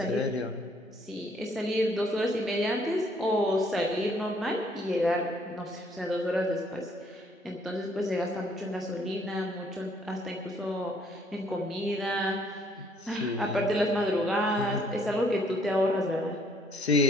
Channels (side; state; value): both; normal; correlation 0.65